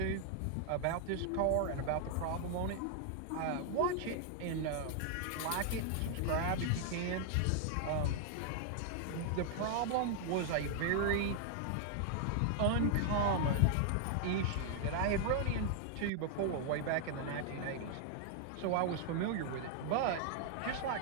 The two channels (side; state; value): both; different; correlation 0.00